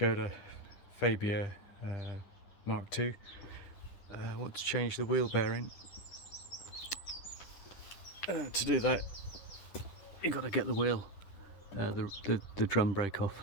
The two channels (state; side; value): late; right; 10 ms